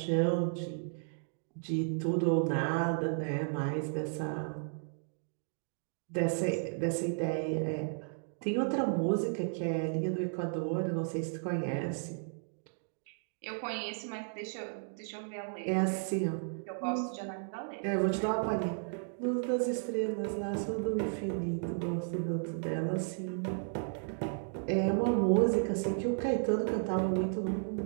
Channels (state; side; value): silent; left; digital silence